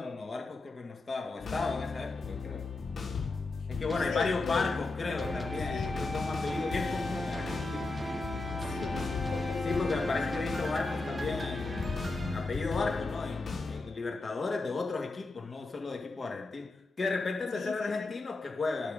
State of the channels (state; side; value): quieter; right; 3.3 dB